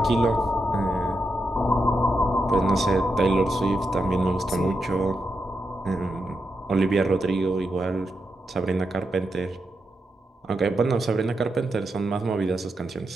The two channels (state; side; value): normal; both; correlation 0.86